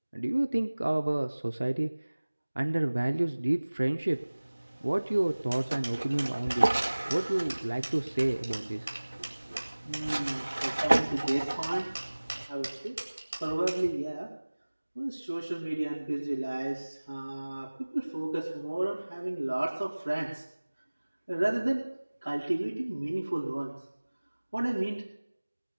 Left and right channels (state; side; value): inverted; both; correlation -1.00